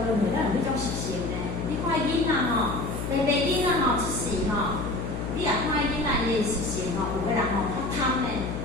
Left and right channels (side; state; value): left; noise; hum, 5 dB below the sound